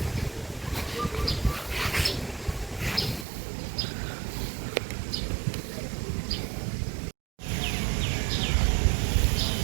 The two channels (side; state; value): left; drops out; at 3.2 s